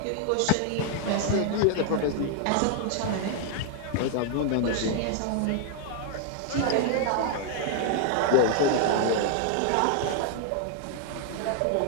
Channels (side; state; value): both; different; correlation 0.00